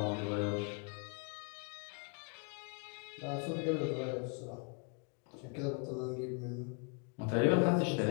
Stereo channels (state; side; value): quieter; right; 36.7 dB